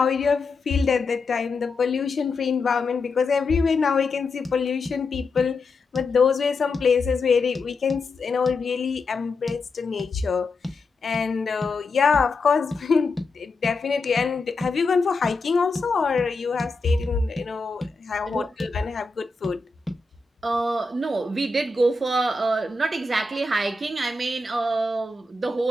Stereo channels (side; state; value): right; quieter; 3.5 dB